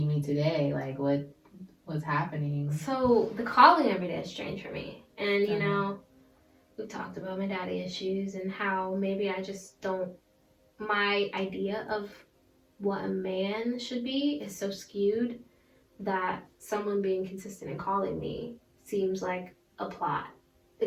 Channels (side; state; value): both; identical; correlation 1.00